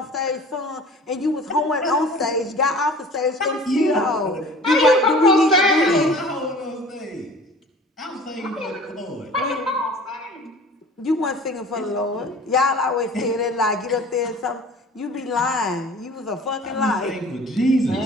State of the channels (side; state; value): both; normal; correlation 0.44